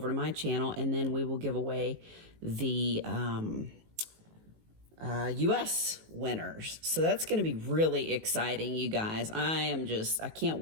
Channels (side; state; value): left; late; 19 ms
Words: to my channel, and then we will give away the US winners. So that's going to be really exciting, you guys. I can't